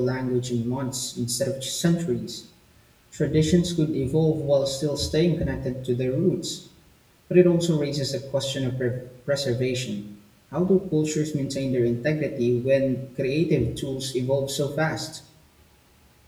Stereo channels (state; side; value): identical; both; correlation 1.00